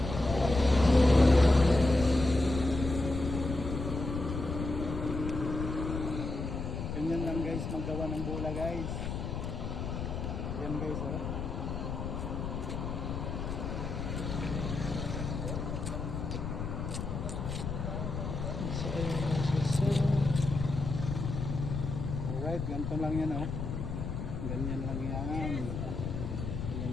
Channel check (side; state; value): left; noise; rumble, 4 dB below the sound